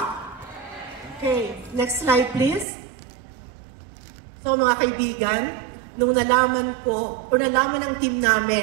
Okay, next slide please. So mga kaibigan, nung nalaman ko, o nalaman ng team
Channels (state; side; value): drops out; left; at 2.7 s